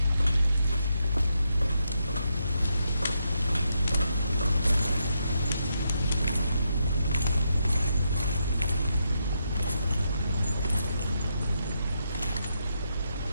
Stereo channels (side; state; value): both; inverted; correlation -0.81